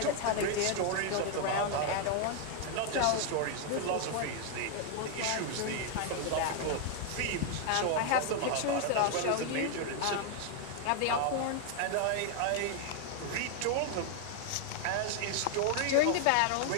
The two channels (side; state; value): both; different; correlation 0.00